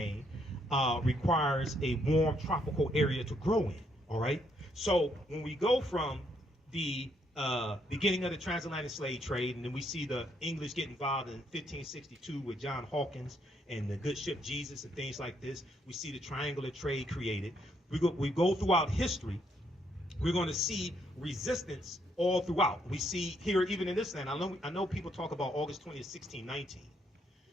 requires a warm tropical area to grow in. All right. So when we go from the beginning of the transatlantic slave trade, and then we see the English get involved in 1562 with John Hawkins and the good ship Jesus and things like this. We see the triangular trade created. We go throughout history. We're going to see resistance all throughout. We see here, even in this land, I know people talk about August 20th, 1619.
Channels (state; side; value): normal; both; correlation 0.73